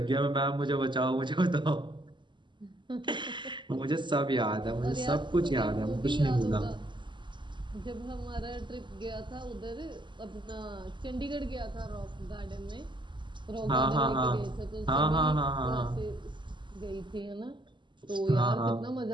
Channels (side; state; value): left; late; 0.23 ms